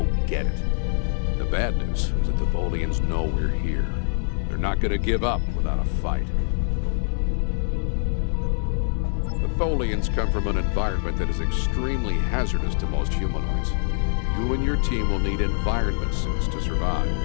get it. The bad news is that the Tholians know we're here. They're not going to give up without a fight. The Tholians come from an environment that is extremely hazardous to most humanoids. You and your team will need environment suits to survive.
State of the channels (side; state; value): right; silent; digital silence